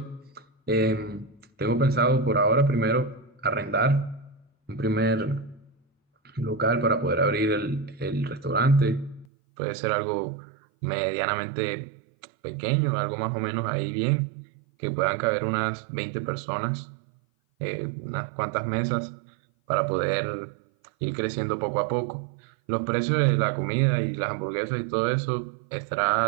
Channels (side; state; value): left; drops out; at 9.2 s